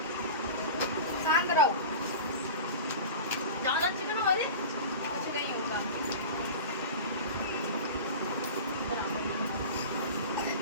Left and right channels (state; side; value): inverted; both; correlation -0.32